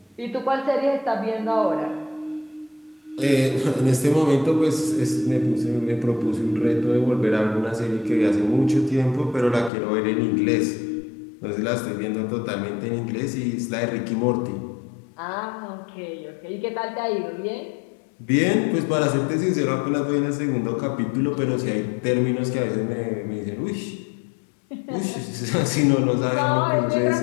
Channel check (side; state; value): right; drops out; at 9.7 s